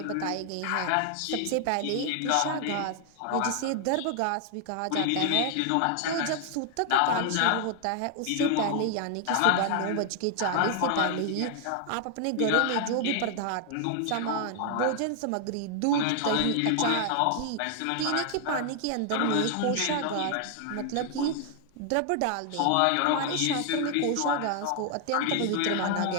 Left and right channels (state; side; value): different; both; correlation 0.00